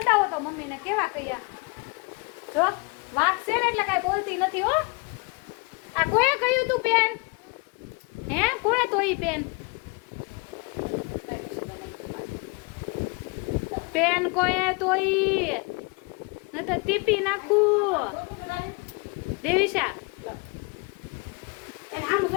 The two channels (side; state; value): right; quieter; 30.1 dB